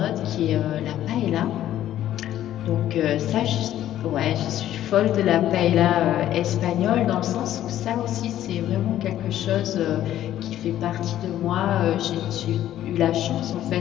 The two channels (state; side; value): quieter; right; 12.4 dB